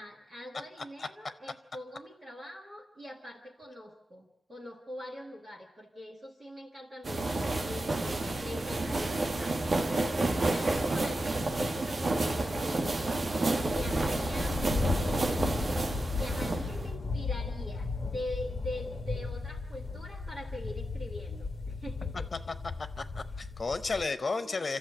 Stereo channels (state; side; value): normal; both; correlation 0.89